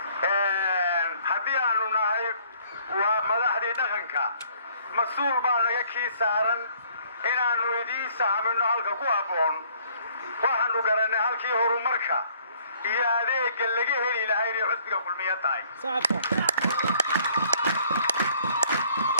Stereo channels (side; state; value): both; inverted; correlation -0.61